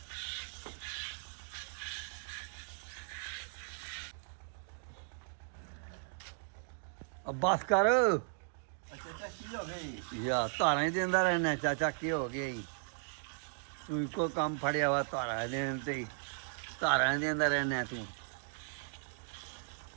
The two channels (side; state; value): left; silent; digital silence